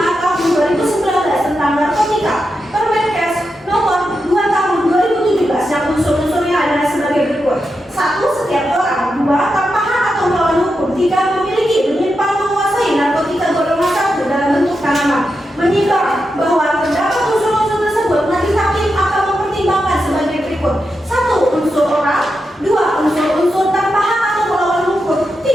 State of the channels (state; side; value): normal; both; correlation 0.87